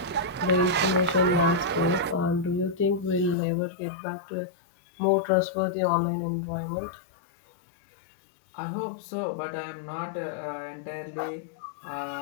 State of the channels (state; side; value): drops out; right; at 3.4 s